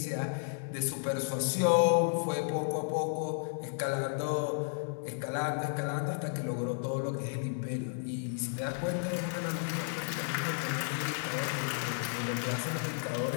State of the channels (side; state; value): right; silent; digital silence